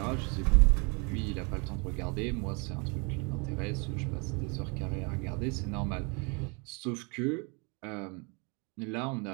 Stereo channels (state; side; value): quieter; left; 32.5 dB